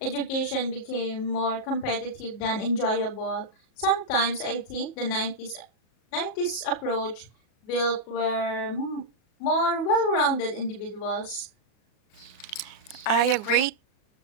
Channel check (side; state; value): right; late; 37 ms